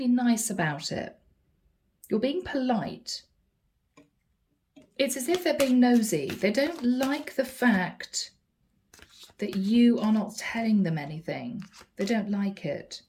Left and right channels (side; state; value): both; identical; correlation 1.00